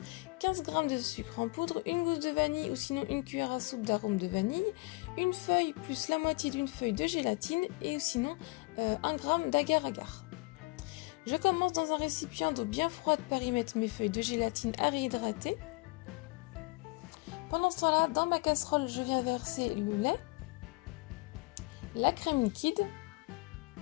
15 g de sucre en poudre, une gousse de vanille ou sinon une cuillère à soupe d'arôme de vanille, une feuille plus la moitié d'une feuille de gélatine et sinon 1 g d'agar-agar. Je commence dans un récipient d'eau bien froide par y mettre mes feuilles de gélatine à réhydrater. Pendant ce temps-là, dans ma casserole, je viens verser le lait, la crème liquide,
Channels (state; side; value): quieter; right; 26.3 dB